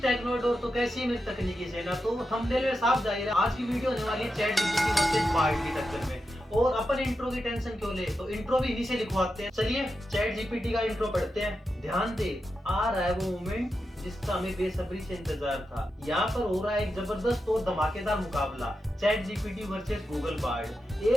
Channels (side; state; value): both; normal; correlation 0.88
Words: Technodor. तो कैसी है मेरी तकनीकी सेना। तो थंबनेल में साफ जाहिर है आज की वीडियो होने वाली है चैट जीपीटी वर्सेस बार्ड की टक्कर में। और अपन इंट्रो की टेंशन क्यों ले, तो इंट्रो भी इन्हीं से लिखवाते हैं। चलिए चैट जीपीटी का इंट्रो पढ़ते हैं। ध्यान दे, आ रहा है वो मोमेंट जिसका हमें बेसब्री से इंतजार था। यहाँ पर हो रहा है एक जबरदस्त और धमाकेदार मुकाबला, chat GPT versus Google Bard.